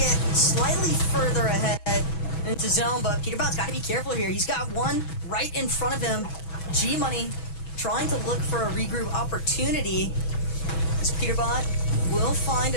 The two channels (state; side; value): late; right; 6.2 ms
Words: slightly further ahead into zone, but Peterbot's got to be careful here. He's got one right in front of him. G-Money trying to look for a regroup opportunity. As Peterbot will find